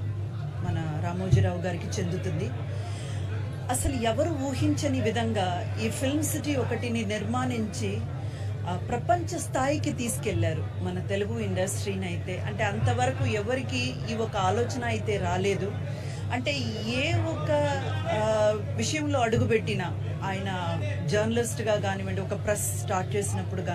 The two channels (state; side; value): identical; both; correlation 1.00